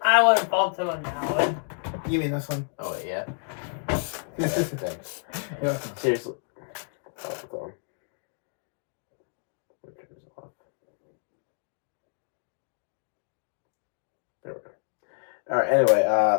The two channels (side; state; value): right; silent; 59 dB below the other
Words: I would bump him on that one. You mean this one? Oh, wait, yeah? Thanks. Yeah. Seriously. Oh, it's on. There we go. Alright, anyway,